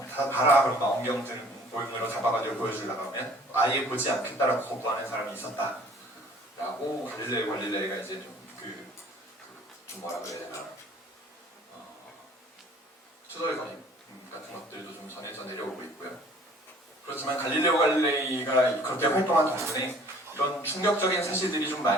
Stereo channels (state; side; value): normal; both; correlation 0.53